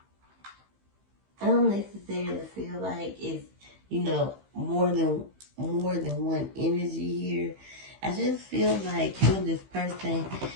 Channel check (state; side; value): late; left; 15 ms